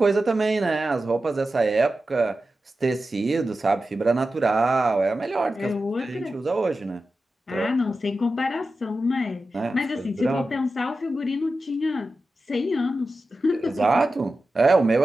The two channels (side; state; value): both; normal; correlation 0.92